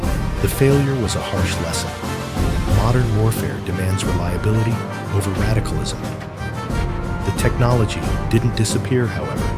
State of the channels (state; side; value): identical; both; correlation 1.00